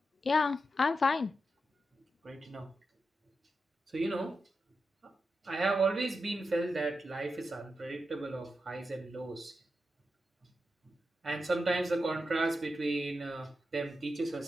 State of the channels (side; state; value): both; normal; correlation 0.88